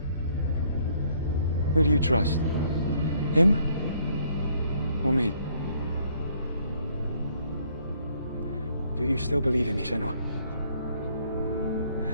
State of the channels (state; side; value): inverted; both; correlation -0.66